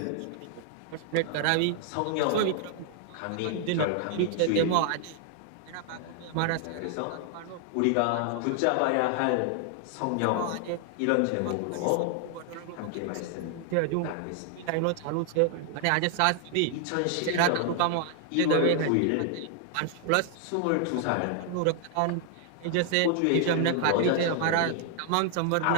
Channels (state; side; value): different; both; correlation 0.00